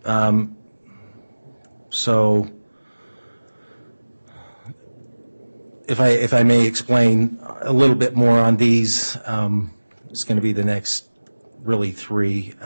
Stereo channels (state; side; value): inverted; both; correlation -1.00